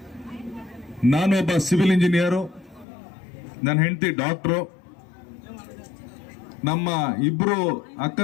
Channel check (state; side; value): drops out; right; at 2.9 s